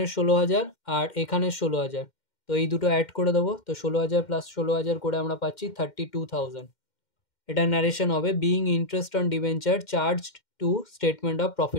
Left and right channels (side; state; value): right; late; 2.1 ms